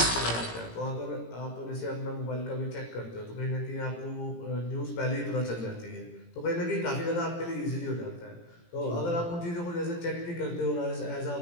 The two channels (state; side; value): late; right; 17 ms